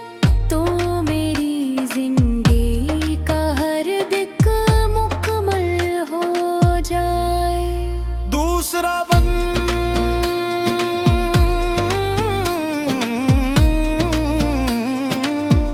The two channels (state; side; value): identical; both; correlation 1.00